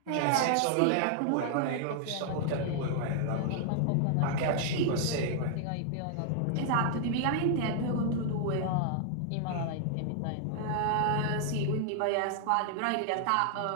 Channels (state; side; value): different; both; correlation -0.01